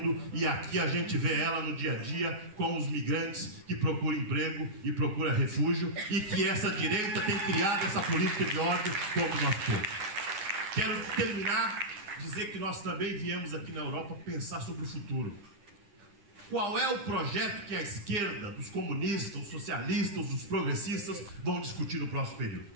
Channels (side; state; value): left; late; 10 ms